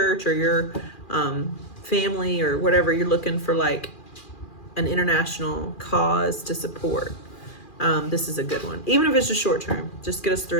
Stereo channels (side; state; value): right; late; 2.4 ms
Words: or your family or whatever, you're looking for like an international cause to support, this is a good one. Even if it's just short term, just get us